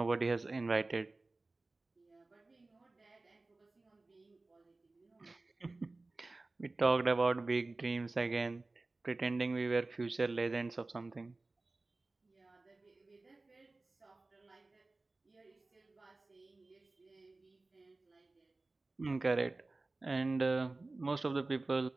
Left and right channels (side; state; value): left; quieter; 3.3 dB